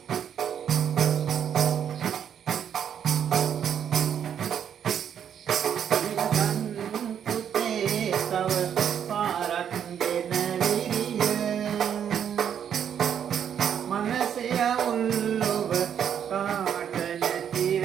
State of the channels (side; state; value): left; quieter; 8.7 dB